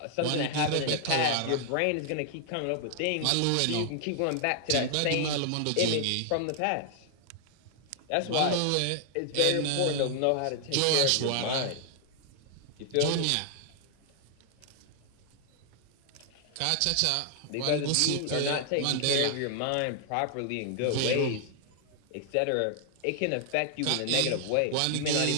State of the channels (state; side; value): different; both; correlation 0.00